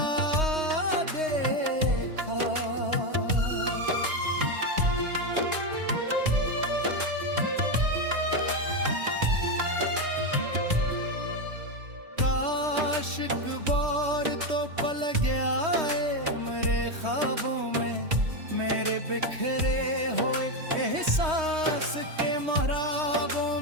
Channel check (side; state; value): left; late; 3.2 ms